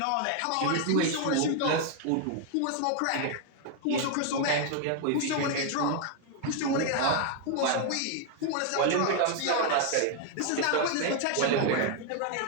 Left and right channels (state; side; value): different; both; correlation 0.00